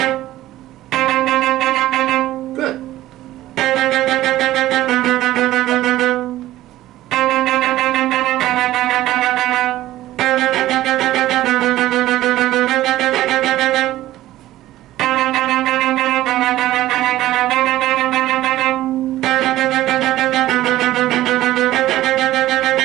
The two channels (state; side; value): quieter; left; 15.1 dB